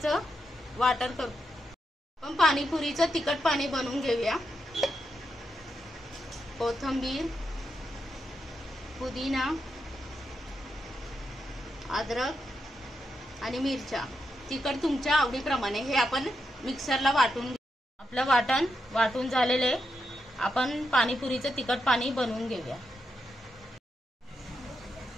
वाटण करू। आपण पाणीपुरीचं तिखट पाणी बनवून घेऊया। कोथिंबीर, पुदिना, अद्रक आणि मिरच्या, तिखट तुमच्या आवडीप्रमाणे हे आपण मिक्सरला वाटून घेऊ। आपलं वाटण वाटून झालेले आपण पाणीपुरीचं तिखट पाणी बनवून घेऊया।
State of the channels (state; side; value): normal; both; correlation 0.84